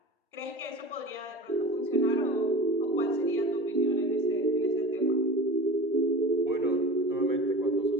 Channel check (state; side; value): normal; both; correlation 0.34